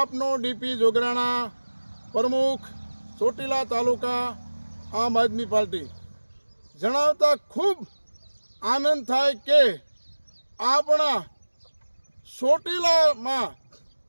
ડીપી જોગરાણા, પ્રમુખ ચોટીલા તાલુકા આમ આદમી પાર્ટી. જણાવતા ખૂબ આનંદ થાય કે આપણા ચોટીલામાં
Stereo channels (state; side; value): inverted; both; correlation -1.00